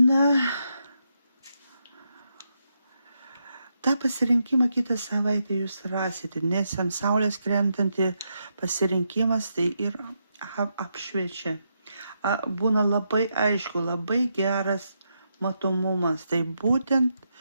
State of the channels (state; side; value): inverted; both; correlation -0.82